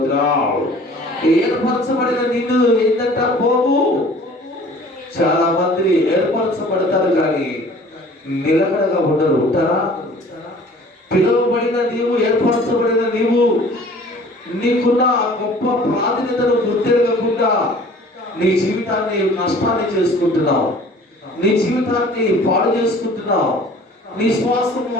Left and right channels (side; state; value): both; normal; correlation 0.49